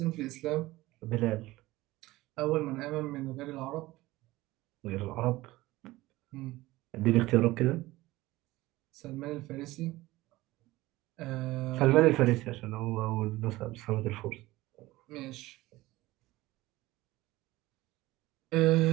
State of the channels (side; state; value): left; quieter; 18.5 dB